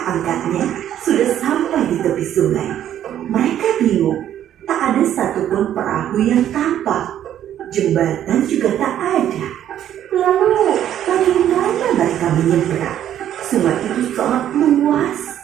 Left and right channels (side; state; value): left; quieter; 10.9 dB